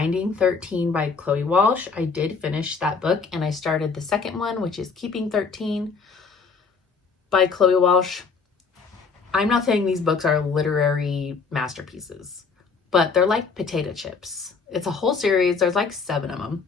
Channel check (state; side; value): quieter; right; 5.1 dB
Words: 13 by Chloe Walsh. I did finish that book, and I started the second one, which is Keeping 13 by Chloe Walsh. I'm not saying these books are literary masterpieces, but they're like potato chips. It's a whole series. There's like 7 of them.